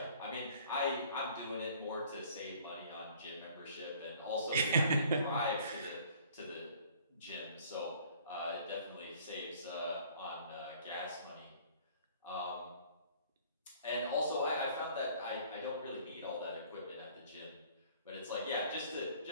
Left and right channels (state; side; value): inverted; both; correlation -0.54